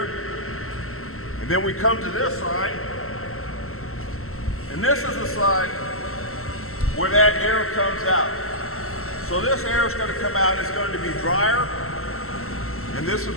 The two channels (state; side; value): late; right; 0.63 ms